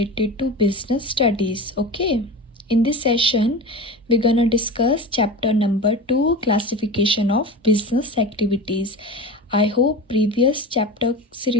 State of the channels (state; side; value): normal; both; correlation 0.29